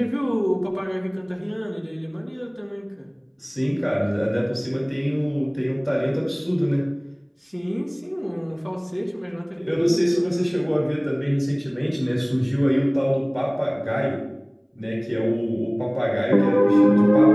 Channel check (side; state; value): both; identical; correlation 1.00